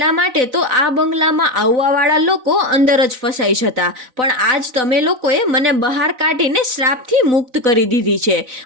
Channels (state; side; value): late; left; 4.0 ms